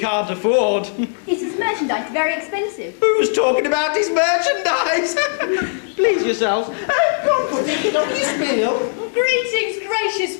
afford. Is his merchandise very expensive? Who's talking about his merchandise? Please yourselves. Go on, put it on your spiel. Greetings, gracious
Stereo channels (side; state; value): right; silent; digital silence